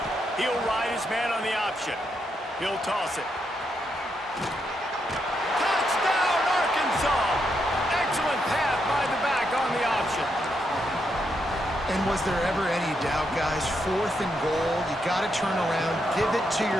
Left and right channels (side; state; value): both; normal; correlation 0.81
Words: He'll ride his man on the option. He'll toss it. Touchdown, Arkansas! Excellent path by the back on the option. And was there ever any doubt, guys? 4th and goal, you got to turn around, give it to